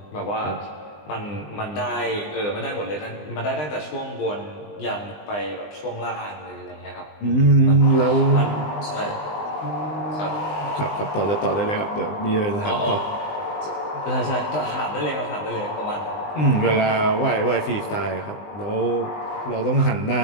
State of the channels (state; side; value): late; right; 20 ms